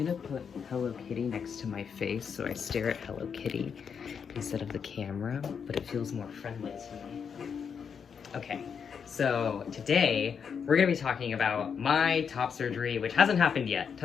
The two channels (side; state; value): right; quieter; 6.8 dB